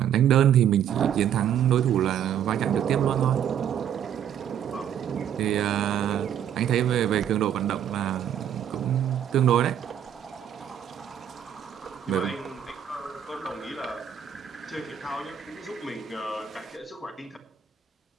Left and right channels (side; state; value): left; quieter; 9.4 dB